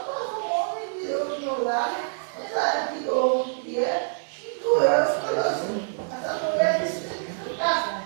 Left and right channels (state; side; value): silent; left; digital silence